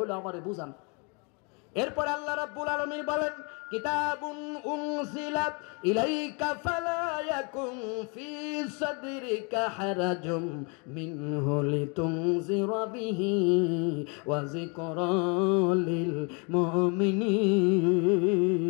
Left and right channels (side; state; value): right; quieter; 33.4 dB